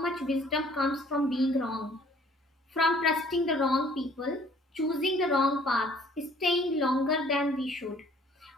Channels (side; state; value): both; normal; correlation 0.57